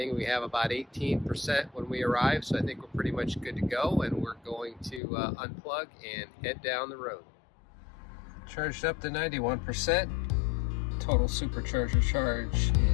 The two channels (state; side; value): drops out; right; at 5.0 s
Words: we have about 18% when we arrive, so I think we're pretty much good to go, and we're going to unplug and head down the road. Charged up to 91%. Total Supercharger charge